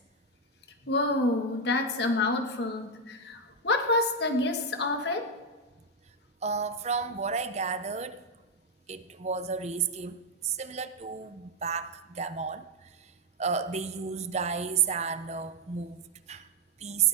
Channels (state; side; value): normal; both; correlation 0.03